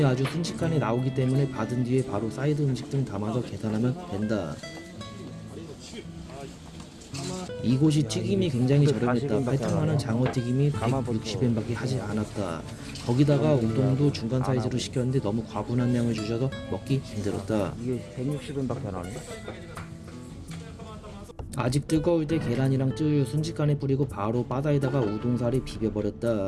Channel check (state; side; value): identical; both; correlation 1.00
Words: 아주 순식간에 나오기 때문에 받은 뒤에 바로 사이드 음식 등 담아서 계산하면 된다. 이곳이 튀김이 굉장히 저렴했다. 8,000원은 장어튀김이 160엔밖에 하지 않았다. 거기다가 우동도 중간 사이즈로 시켰는데 너무 과분한 양을 주셔서 먹기 힘들었다. 이게 160엔밖에 안 하네. 아직 뜨거울 때 계란이랑 쯔유 순식간에 뿌리고 바로 바다에다가 우동살이